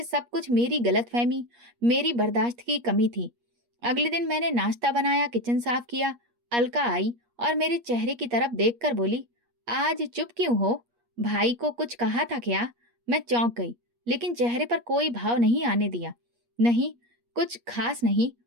सब कुछ मेरी गलतफहमी, मेरी बर्दाश्त की कमी थी। अगले दिन मैंने नाश्ता बनाया, किचन साफ किया। अलका आई और मेरे चेहरे की तरफ देखकर बोली, आज चुप क्यों हो? भाई को कुछ कहा था क्या? मैं चौंक गई, लेकिन चेहरे पर कोई भाव नहीं आने दिया। नहीं, कुछ खास नहीं।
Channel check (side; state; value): left; late; 8.4 ms